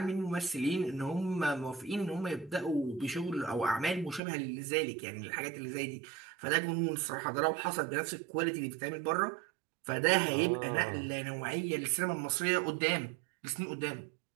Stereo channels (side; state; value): left; drops out; at 4.2 s